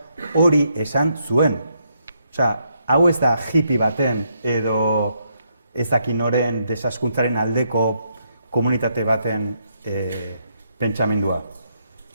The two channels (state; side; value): inverted; both; correlation -0.77